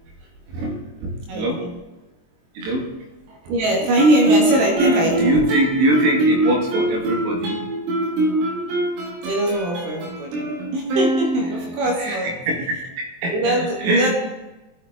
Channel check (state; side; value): late; left; 23 ms